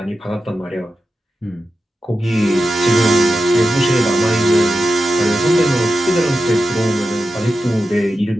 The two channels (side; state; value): both; normal; correlation 0.91